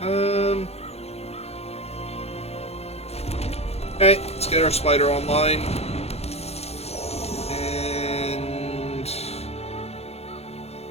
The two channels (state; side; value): late; right; 0.30 ms